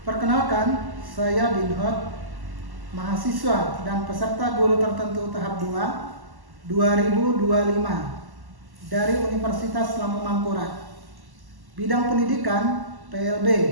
Perkenalkan, saya Dinhot, mahasiswa dan peserta guru tertentu tahap 2 2025 dari Universitas Lampung Mangkurat. Bidang pendidikan PLB,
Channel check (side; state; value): left; late; 1.1 ms